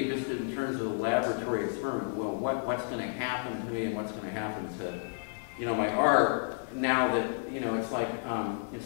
just in terms of the laboratory experiment, well, what's going to happen to me and what's going to happen to, my art now that, it's like, in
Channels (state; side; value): silent; right; digital silence